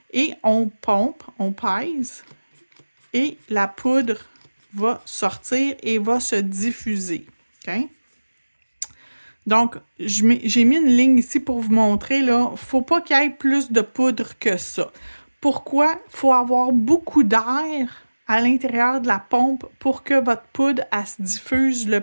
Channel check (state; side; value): inverted; both; correlation -1.00